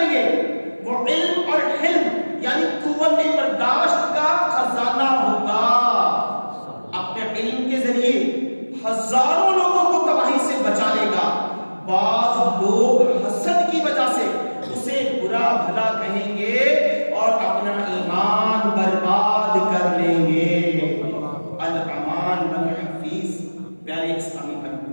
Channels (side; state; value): both; inverted; correlation -1.00